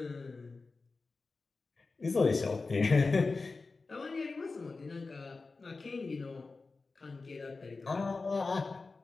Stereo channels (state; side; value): quieter; right; 3.9 dB